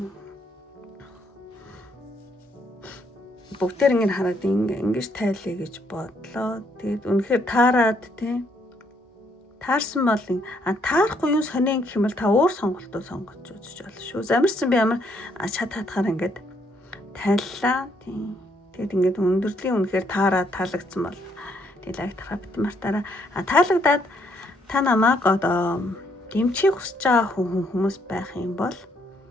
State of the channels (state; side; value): normal; both; correlation 0.71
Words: бүгдээр ингэ хараад ингэж тайлъя гэж бодлоо. Тэгээд үнэхээр таарад тий. Таарсан бол таарахгүй юу сонин гэх юм бол та өөр сонголтоо сонгож үзэж болно шүү. Замарсан би ямар чад хатахаар ингээд тайллаа тий. Тэгээд ингээд өндөрлийн үнэхээр таарад таалагдсан бол тий лайк тарахад мартаараа таалагдаад та намайг одоо дэмжих хүсэж байгаа хүмүүс байх юм бол